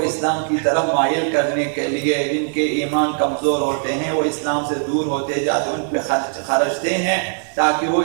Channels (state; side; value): silent; left; digital silence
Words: اسلام کی طرف مائل کرنے کے لیے، جن کے ایمان کمزور ہوتے ہیں، وہ اسلام سے دور ہوتے جاتے، ان پہ خرچتے ہیں تاکہ وہ